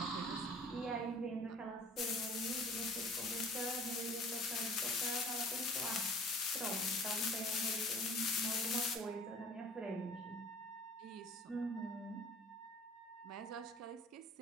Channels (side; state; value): both; normal; correlation 0.49